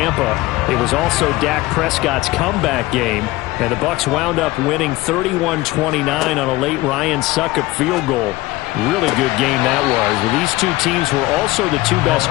It was also Dak Prescott's comeback game, and the Bucs wound up winning 31-29 on a late Ryan Succop field goal. Really good game that was. Well, these two teams were also the two best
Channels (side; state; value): right; quieter; 19.1 dB